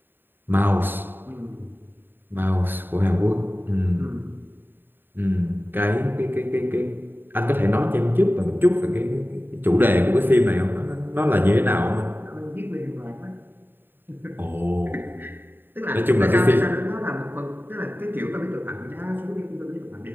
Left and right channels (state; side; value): late; left; 0.095 ms